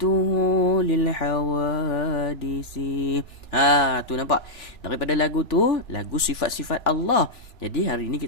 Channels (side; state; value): right; late; 2.9 ms